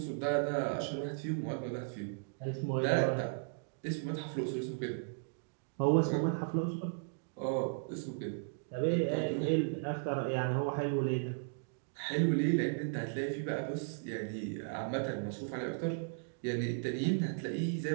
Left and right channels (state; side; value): silent; left; digital silence